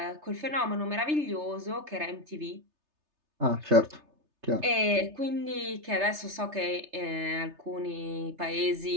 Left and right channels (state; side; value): late; left; 3.3 ms